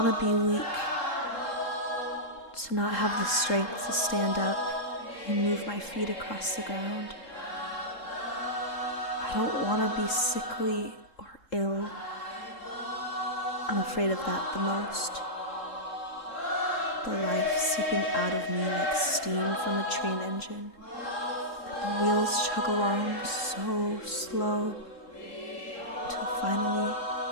be weak, to not have the strength to stand up and move my feet across the ground. I don't want to be sickly or ill. I'm afraid of that the most. The life seeping out of me like steam from a train engine. And the wheels chug along so slow until finally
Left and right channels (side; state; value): right; late; 3.7 ms